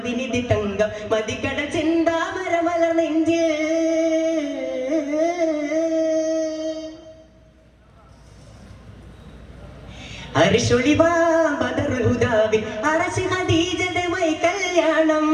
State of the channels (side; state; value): both; identical; correlation 1.00